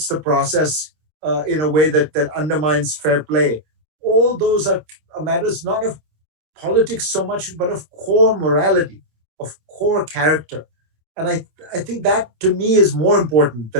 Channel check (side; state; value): left; late; 26 ms